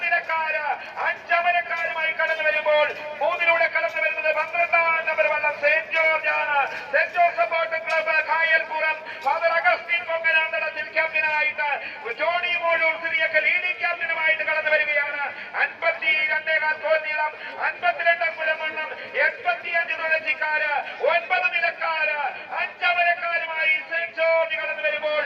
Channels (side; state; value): both; identical; correlation 1.00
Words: നിലക്കാര്, 5 അമരക്കാരുമായി കടന്നു വരുമ്പോൾ 3 കടന്നു വരുന്നത് 12 നമ്പർ വള്ളം സെന്റ് ജോർജ് ആണ്. Saint Joseph boat club Kayalpuram father Augustine Ponkananthadathil ക്യാപ്റ്റനായിട്ട് ജോണി മോളൂർ സിറിയക്ക് ലീഡിംഗ് ക്യാപ്റ്റനുമായിട്ട് കടന്നു വരികയാണ്. 52 ഗോൾ നീളം, 52 മുഴമണ്ണം, 85 തുളസിക്കാര്, 9 നിലക്കാര്, 5 അമരക്കാരുമായി സെന്റ് ജോർജ് കടന്നു വരുമ്പോൾ